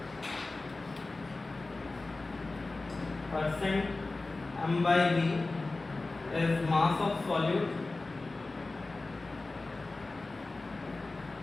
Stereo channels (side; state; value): right; quieter; 3.3 dB